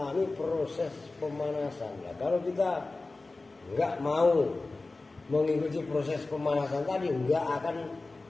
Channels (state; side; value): quieter; right; 3.4 dB